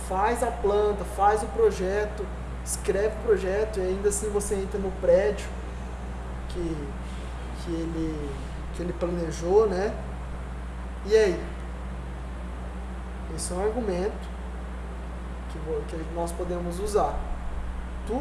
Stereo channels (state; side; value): identical; both; correlation 1.00